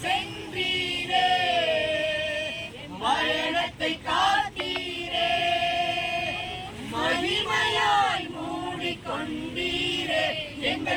சென்றீரே பயணத்தை காத்தீரே. மகிமையாய் மூடிக்கொண்டீரே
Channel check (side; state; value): both; identical; correlation 1.00